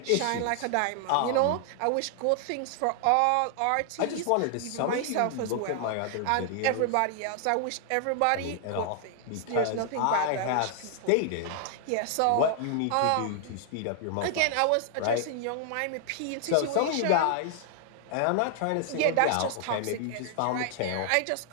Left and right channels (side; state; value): both; different; correlation 0.00